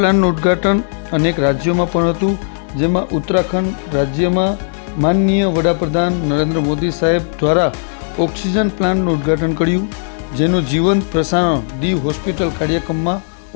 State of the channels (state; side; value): silent; right; 68 dB below the other